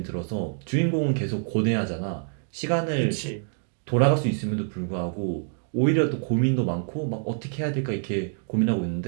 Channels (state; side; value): silent; left; 61 dB below the other